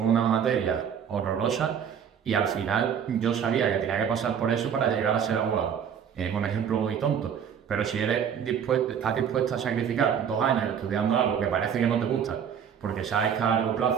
una materia horrorosa y al final yo sabía que tenía que pasar por eso para llegar a ser abogado. Es un ejemplo muy tonto. Pero si estás dispuesto a sacrificar 2 años estudiando algo que parece que no te gusta, porque sabes que a largo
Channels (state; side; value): quieter; left; 8.0 dB